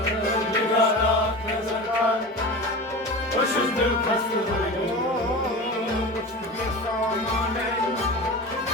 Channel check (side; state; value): both; normal; correlation 0.30